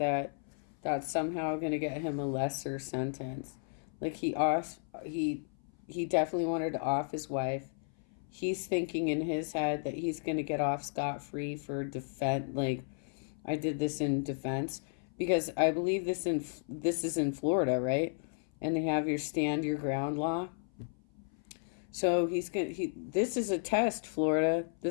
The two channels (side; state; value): right; silent; 55 dB below the other